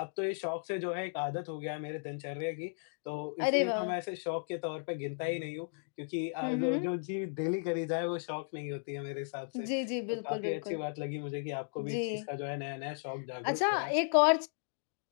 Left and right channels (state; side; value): silent; right; digital silence